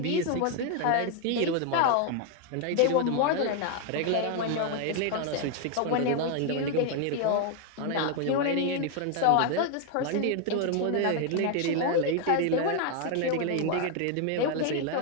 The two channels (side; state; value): both; different; correlation 0.01